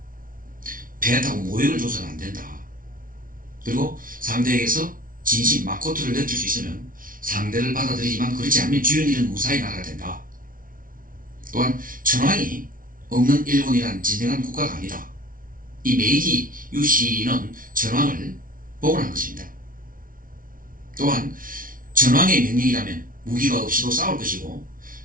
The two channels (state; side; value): late; left; 0.40 ms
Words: 배타고 모욕을 줘서는 안 된다. 그리고 상대에게서 진심 마코토를 느낄 수 있으면 상대를 받아들이지만 그렇지 않으면 주연 일은 무사히 나가야 된다. 또한 천황이 없는 일본이란 진정한 국가가 아니다. 이 메이지 유신은 천황을 복원한 것입니다. 또한 천황의 명령이라면 무기가 없이도 싸울 것이고